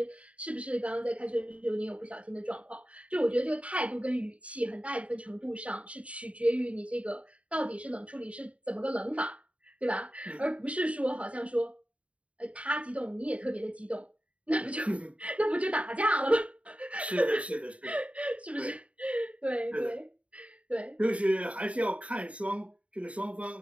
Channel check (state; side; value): late; left; 0.064 ms